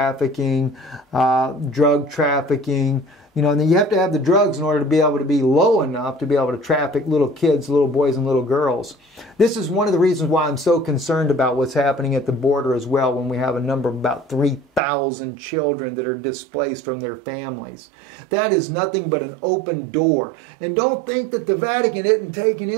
drug trafficking. You know, and then you have to have the drugs in order to be able to be low enough to be able to traffic little kids, little boys and little girls. This is one of the reasons why I'm so concerned about what's happening at the border as well, when we have a number of about 3,000 children that are displaced from their families. That is nothing but an open door. And don't think that the Vatican isn't taking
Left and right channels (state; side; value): drops out; left; at 14.8 s